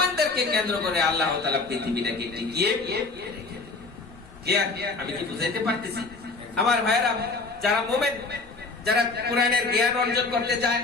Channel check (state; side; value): quieter; right; 3.8 dB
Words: কেন্দ্র করে আল্লাহ তাআলা পৃথিবীটাকে টিকিয়ে রেখে দেবেন। কি আমি কি বুঝাইতে পারতেছি? আমার ভাইরা যারা মুমিন, যারা কোরআনের জ্ঞান অর্জন করতে চায়,